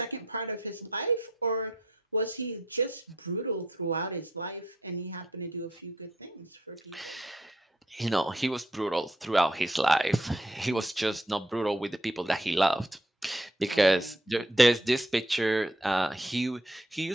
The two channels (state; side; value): normal; both; correlation 0.71